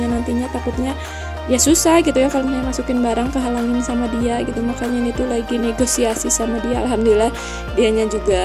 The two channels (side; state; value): both; identical; correlation 1.00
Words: nantinya takutnya ya susah gitu ya kalau misalnya masukin barang kehalangin sama dia gitu. Makanya ini tuh lagi negosiasi sama dia. Alhamdulillah dianya